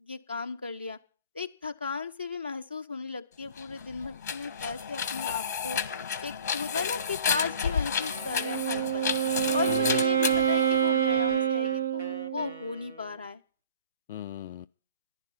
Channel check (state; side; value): inverted; both; correlation -0.47